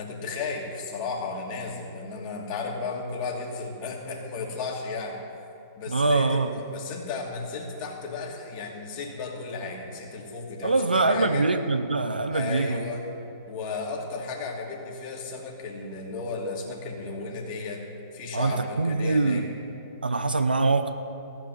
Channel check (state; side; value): inverted; both; correlation -0.65